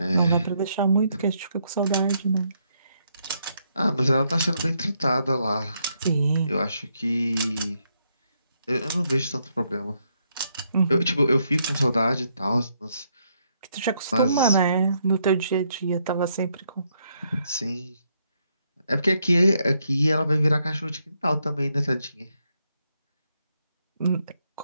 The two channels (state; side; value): inverted; both; correlation -0.76